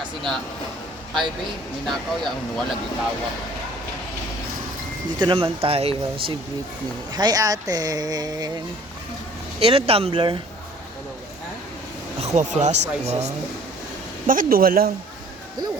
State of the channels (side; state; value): both; normal; correlation 0.53